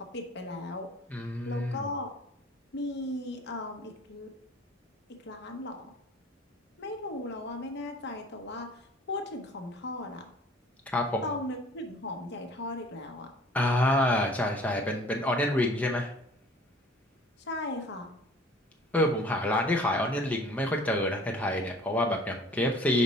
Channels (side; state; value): both; normal; correlation 0.50